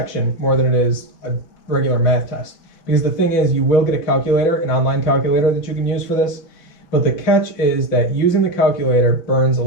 more than it is a regular math test. Because the thing is, you will get a calculator, an online calculator that you can use for this. But the catch is that using the calculator burns a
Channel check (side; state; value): right; late; 5.6 ms